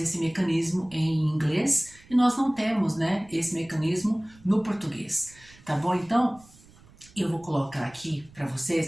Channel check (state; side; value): noise; right; rumble, 25 dB below the sound